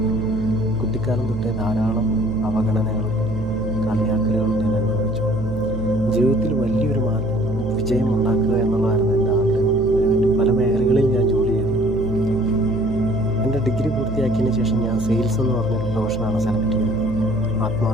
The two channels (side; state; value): right; noise; hum, 8 dB below the sound